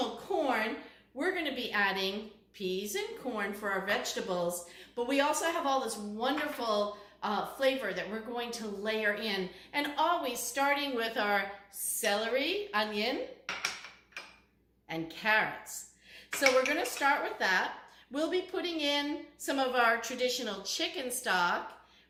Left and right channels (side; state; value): both; identical; correlation 1.00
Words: corn. We're going to be adding peas and corn for our vegetables. But we also have all this wonderful flavor that we're going to layer in. And always starting with our celery, onion, and carrots. So we're going to start with that. We'll be putting in some of our traditional chicken stock.